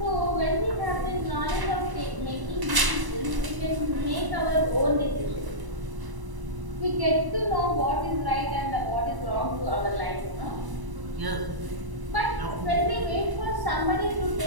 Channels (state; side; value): late; left; 1.0 ms